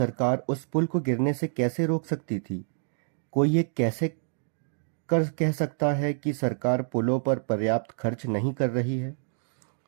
उस पुल को गिरने से कैसे रोक सकती थी? कोई ये कैसे कह सकता है कि सरकार पुलों पर पर्याप्त खर्च नहीं कर रही है?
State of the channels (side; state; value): left; silent; digital silence